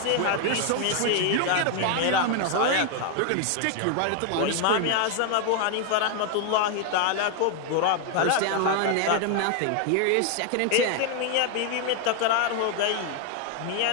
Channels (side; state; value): both; different; correlation 0.01